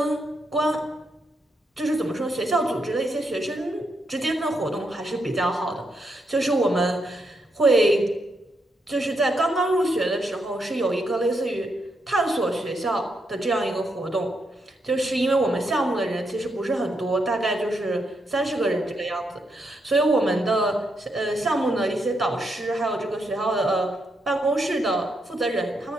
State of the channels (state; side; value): normal; both; correlation 0.80